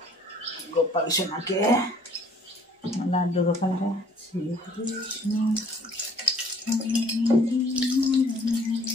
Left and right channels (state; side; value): normal; both; correlation 0.57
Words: গোপাল সোনাকে লাড্ডু গোপালকে